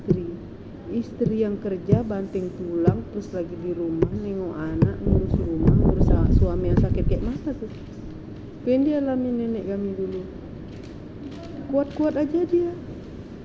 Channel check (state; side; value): identical; both; correlation 1.00